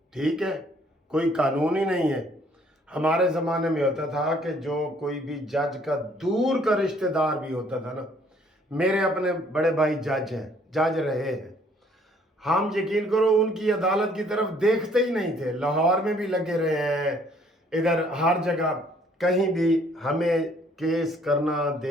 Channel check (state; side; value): normal; both; correlation 0.62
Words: ٹھیک ہے، کوئی قانون ہی نہیں ہے۔ ہمارے زمانے میں ہوتا تھا کہ جو کوئی بھی جج کا دور کا رشتہ دار بھی ہوتا تھا نا، میرے اپنے بڑے بھائی جج ہیں، جج رہے ہیں، ہم یقین کرو ان کی عدالت کی طرف دیکھتے ہی نہیں تھے۔ لاہور میں بھی لگے رہے ہیں، ادھر ہر جگہ، کہیں بھی ہمیں کیس کرنا